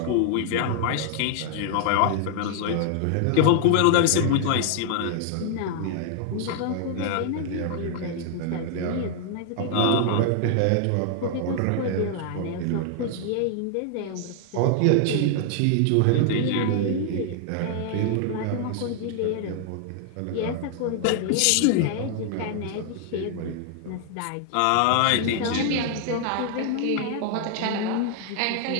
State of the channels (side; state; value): both; different; correlation 0.00